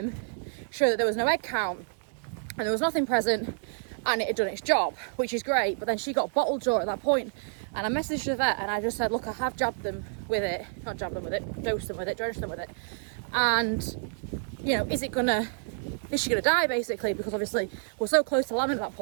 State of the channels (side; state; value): left; silent; digital silence